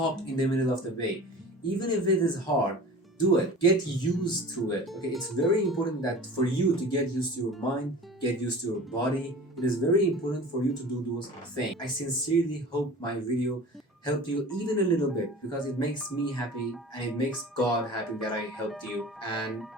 in the middle of the way. Even if it is hard, do it. Get used to it. Okay, it's very important that for you to get used to your mind, get used to your body. It is very important for you to do those things. I sincerely hope my video helped you even a little bit, because it makes me happy and it makes God happy that I helped you. And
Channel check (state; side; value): normal; both; correlation 0.39